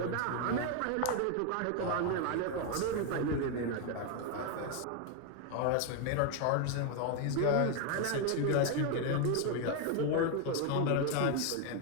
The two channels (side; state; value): both; different; correlation 0.01